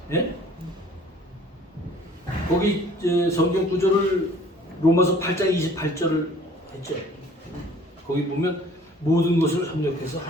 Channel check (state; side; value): normal; both; correlation 0.53